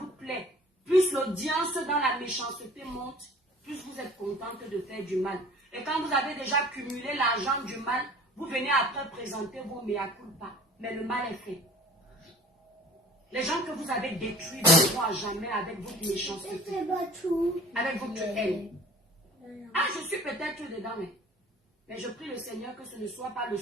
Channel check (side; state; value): both; normal; correlation 0.46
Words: vous plaît. Plus l'audience dans la méchanceté monte, plus vous êtes contente de faire du mal. Et quand vous avez déjà cumulé l'argent du mal, vous venez après présenter vos mea culpa. Mais le mal est fait. Les gens que vous avez détruits ne vont à jamais avec votre méchanceté, avec votre haine. Ah, je suis peut-être dedans, mais je prie le Seigneur que ce ne soit pas le